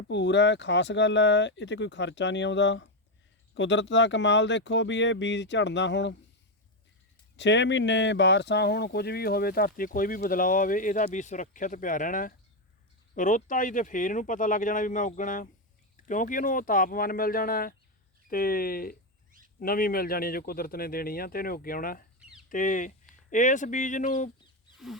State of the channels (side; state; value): both; normal; correlation 0.07